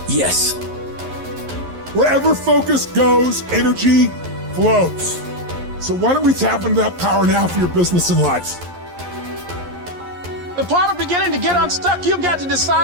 yes. Wherever focus goes, energy flows. So why don't we tap into that power now for your business and life? The part of beginning to get unstuck, you've got to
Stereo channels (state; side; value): late; left; 11 ms